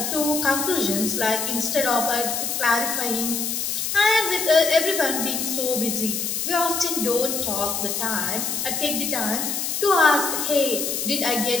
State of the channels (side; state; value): left; noise; hiss, 2 dB below the sound